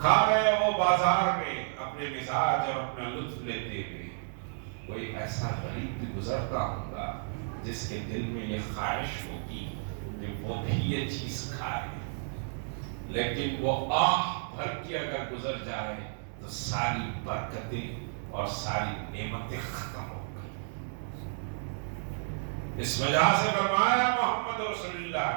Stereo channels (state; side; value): silent; left; digital silence